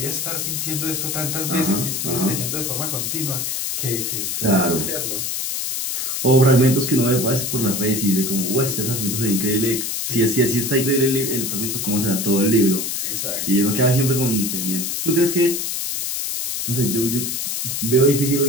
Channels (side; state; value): left; noise; hiss, 2 dB below the sound